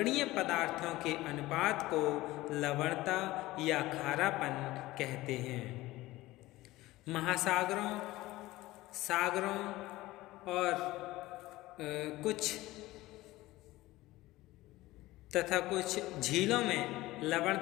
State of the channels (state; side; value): quieter; right; 18.1 dB